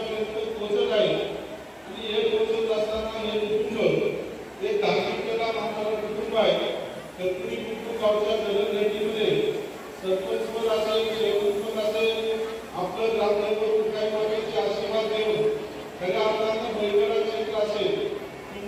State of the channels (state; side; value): identical; both; correlation 1.00